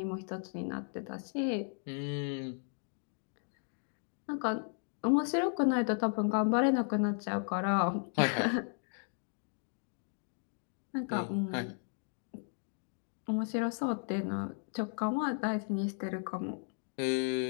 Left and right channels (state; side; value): silent; right; 54 dB below the other